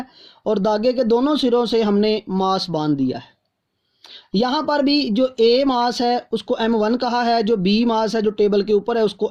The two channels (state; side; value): identical; both; correlation 1.00